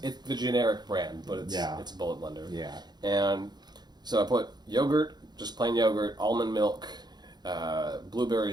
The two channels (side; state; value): left; late; 0.20 ms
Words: the generic brand, but it's a bullet blender. Yeah. And so I put yogurt, just plain yogurt, almond milk,